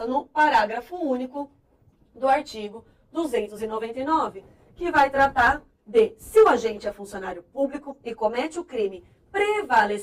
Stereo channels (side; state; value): both; identical; correlation 1.00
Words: no parágrafo único do artigo 299, que vai tratar de se o agente é funcionário público e comete o crime